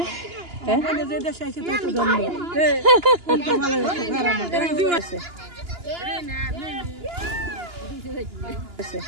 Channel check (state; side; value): late; left; 2.9 ms